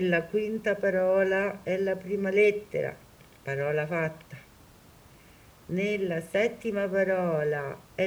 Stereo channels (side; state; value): both; identical; correlation 1.00